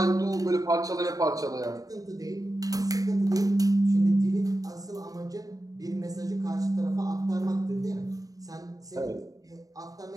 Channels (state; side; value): late; left; 0.17 ms